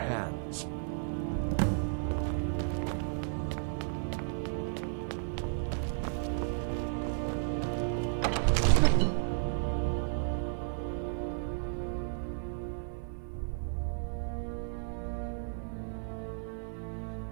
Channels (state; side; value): silent; left; 55 dB below the other